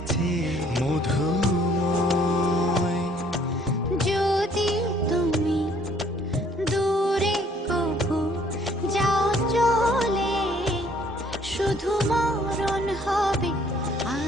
মধুময়। যদি তুমি দূরে কভু যাও চলে, শুধু মরণ হবে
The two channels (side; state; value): both; normal; correlation 0.61